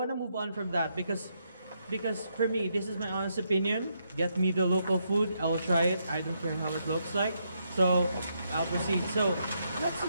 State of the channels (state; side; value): inverted; both; correlation -0.78